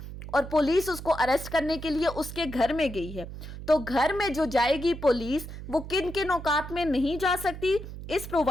और पुलिस उसको अरेस्ट करने के लिए उसके घर में गई है, तो घर में जो जाएगी पुलिस वो किन किन औकात में नहीं जा सकती? इस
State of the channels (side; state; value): right; noise; hum, 11 dB below the sound